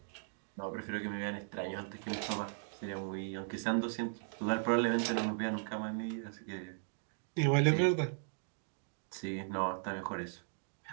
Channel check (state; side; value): silent; left; digital silence